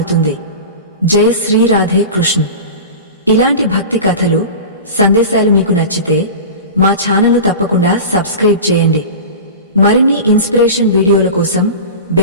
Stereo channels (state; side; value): inverted; both; correlation -0.31